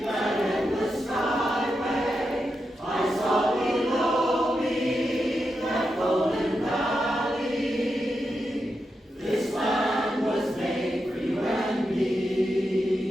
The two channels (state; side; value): normal; both; correlation 0.87